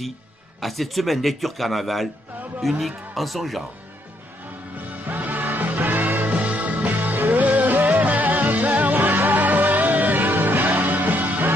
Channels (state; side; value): normal; both; correlation 0.73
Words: à cette semaine lecture carnaval unique en son genre.